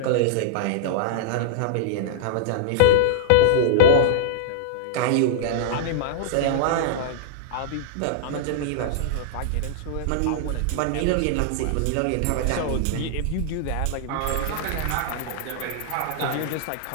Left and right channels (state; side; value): different; both; correlation -0.01